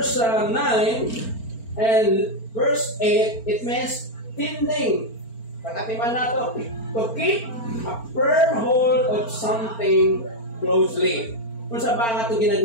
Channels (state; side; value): late; right; 4.4 ms